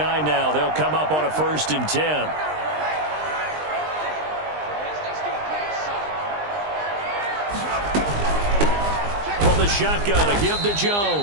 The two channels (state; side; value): late; left; 20 ms